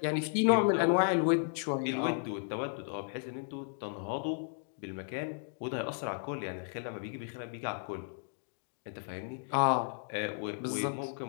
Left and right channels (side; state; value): right; silent; digital silence